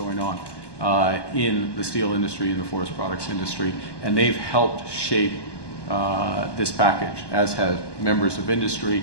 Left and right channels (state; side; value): late; right; 1.2 ms